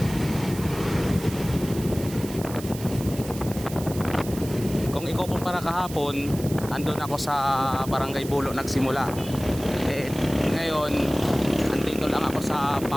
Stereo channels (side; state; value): right; noise; hiss, 14 dB below the sound